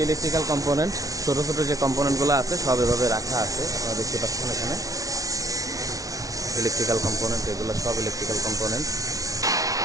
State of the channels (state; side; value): late; left; 0.17 ms